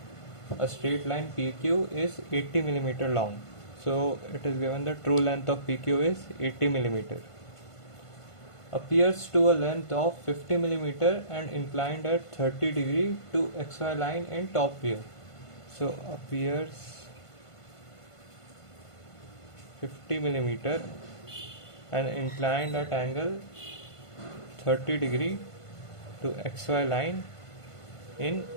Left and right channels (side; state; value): right; late; 1.5 ms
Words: a straight line PQ is 80 millimeter long. So it is given the true length of PQ is 80 millimeter. Appears to a length of 50 millimeter and inclined at 30 degree to XY line in top view. So appears 50 millimeter and inclined at angle 30 degree to XY line in